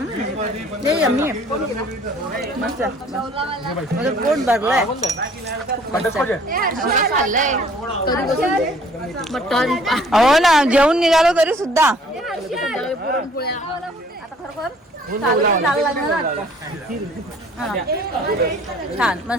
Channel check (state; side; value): normal; both; correlation 0.56